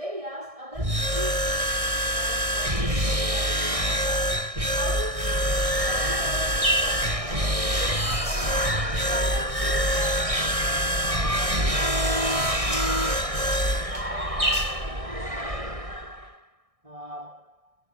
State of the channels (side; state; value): left; late; 1.6 ms